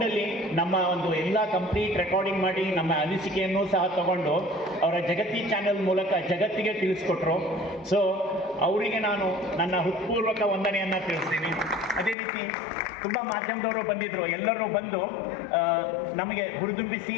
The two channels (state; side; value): drops out; right; at 12.2 s